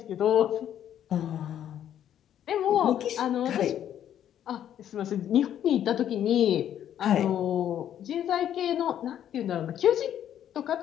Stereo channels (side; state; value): right; quieter; 10.4 dB